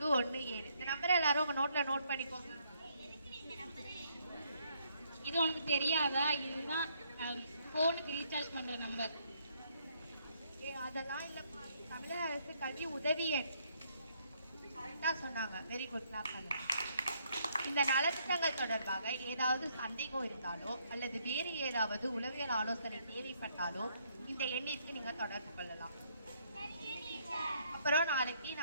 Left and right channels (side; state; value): both; inverted; correlation -0.70